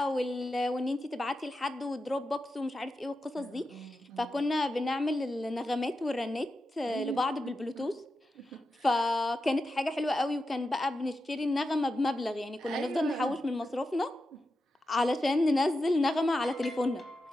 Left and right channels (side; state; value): both; normal; correlation 0.89